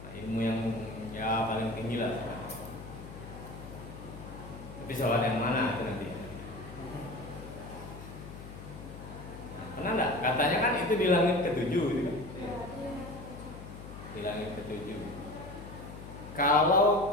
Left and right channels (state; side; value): noise; left; hum, 13 dB below the sound